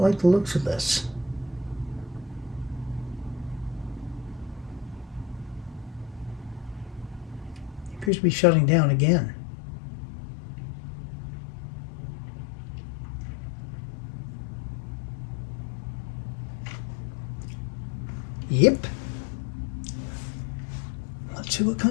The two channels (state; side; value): drops out; right; at 8.1 s